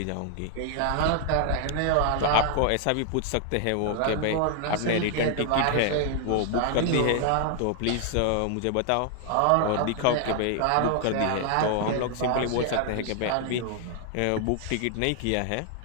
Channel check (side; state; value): both; different; correlation 0.00